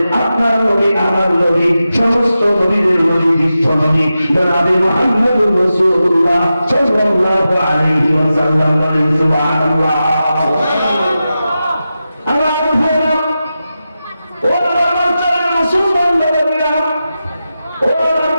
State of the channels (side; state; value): both; inverted; correlation -0.92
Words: আপনার নবী, আমার নবী, সমস্ত নবীদের নবী, বিশ্ব নবী জনাবে মুহাম্মদুর রাসূলুল্লাহ সাল্লাল্লাহু আলাইহি ওয়াসাল্লাম। বলেন সুবহানাল্লাহ। আমার ভাইরা, ও আমার চলেন মুসলমানদের নবীরা, ও